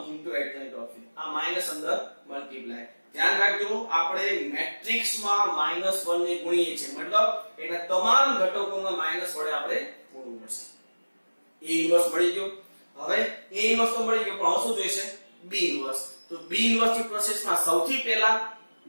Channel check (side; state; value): both; inverted; correlation -1.00